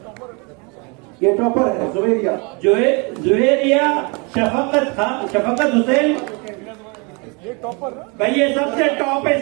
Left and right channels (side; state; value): left; quieter; 31.2 dB